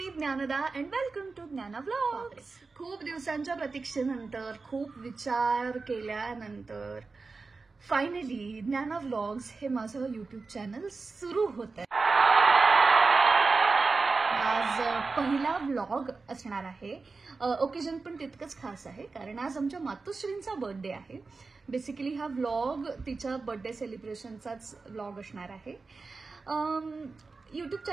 Dnyanada and welcome to ज्ञाना व्लॉग्स. खूप दिवसांच्या प्रतीक्षेनंतर, खूप विचार केल्यानंतर फायनली ज्ञाना व्लॉग्स हे माझं यूट्यूब चॅनल सुरू होत आहे. आज पहिला व्लॉग असणार आहे. ओकेजन पण तितकंच खास आहे कारण आज आमच्या मातोश्रींचा बर्थडे आहे. बेसिकली हा व्लॉग तिच्या बर्थडे सेलिब्रेशनचाच व्लॉग असणार आहे. यूट्यूब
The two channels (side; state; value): left; quieter; 4.1 dB